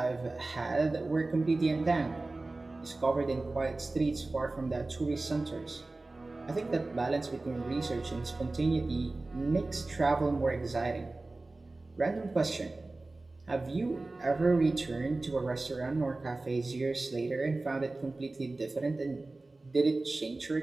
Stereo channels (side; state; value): left; quieter; 3.2 dB